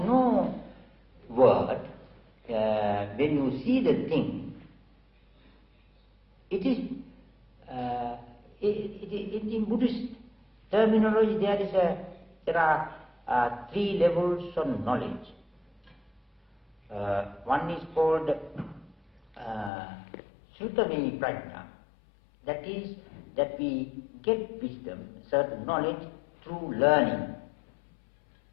word. When you see the thing, it is. In Buddhist terminology, there are 3 levels of knowledge. One is called Srutami Prajna. That is, that we get wisdom, certain knowledge through learning.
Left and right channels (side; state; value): right; drops out; at 19.7 s